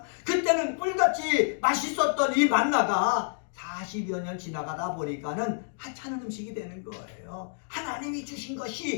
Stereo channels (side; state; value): right; silent; digital silence